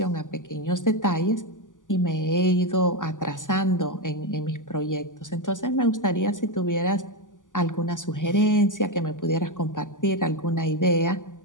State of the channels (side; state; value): right; late; 0.88 ms